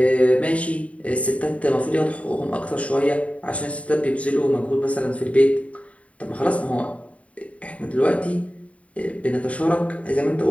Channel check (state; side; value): late; right; 0.066 ms